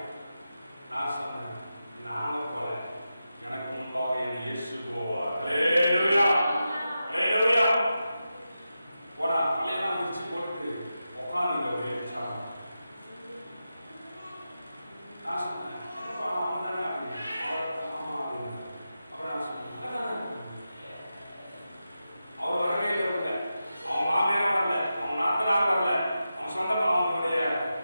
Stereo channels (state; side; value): inverted; both; correlation -0.91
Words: நான் சொன்னேன், நாங்க போல, எனக்கு முன்பாக என் இயேசு போவார். ஹல்லேலூயா ஹல்லேலூயா. போடா தலையெல்லாம் விரிச்சு போட்டு உட்காந்துங்க அப்படியே. நான் சொன்னேன், என்னப்பா அவங்க தானே அப்படின்னு. ஆமா அப்படின்னு. அப்புறம் நான் சொன்னேன், அவர் வரவே இல்லை, அவங்க மாமியாரும் வரல, அவங்க நாத்தனார் வரல, அவங்க சொந்தமா அவங்களுடைய